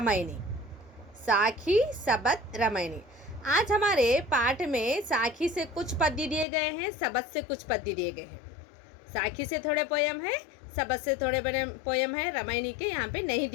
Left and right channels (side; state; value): right; drops out; at 6.5 s